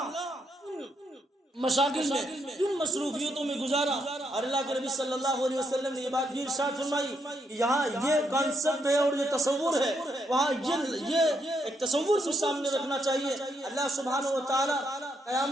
مشاغل میں، کن مصروفیتوں میں گزارا. اور اللہ کے نبی صلی اللہ علیہ وسلم نے یہ بات بھی ارشاد فرمائی کہ یہاں یہ کانسیپٹ ہے اور یہ تصور ہے، وہاں یہ ایک تصور بھی سامنے رکھنا چاہیے. اللہ سبحانہ و تعالیٰ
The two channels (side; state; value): both; normal; correlation 0.77